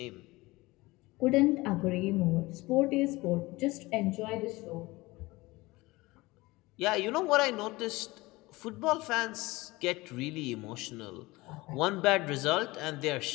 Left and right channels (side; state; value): right; quieter; 21.3 dB